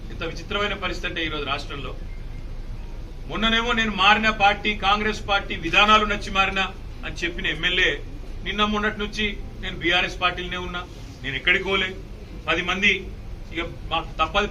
ఇంత విచిత్రమైన పరిస్థితి అంటే ఈరోజు రాష్ట్రంలో, మొన్ననేమో నేను మారిన పార్టీ కాంగ్రెస్ పార్టీ విధానాలు నచ్చి మారినా అని చెప్పిన ఎమ్మెల్యే నిన్న మొన్నటి నుంచి నేను బీఆర్ఎస్ పార్టీలోనే ఉన్నా, నేను ఎక్కడికి పోలే, 10 మంది ఇక మాకు తప్పది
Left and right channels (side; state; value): both; identical; correlation 1.00